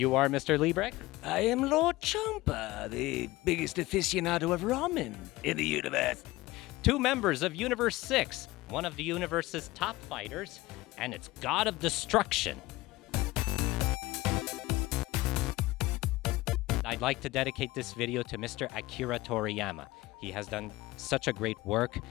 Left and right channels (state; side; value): quieter; right; 19.1 dB